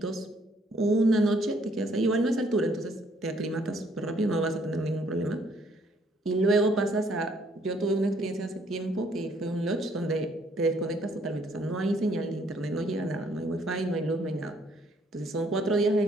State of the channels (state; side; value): normal; both; correlation 0.65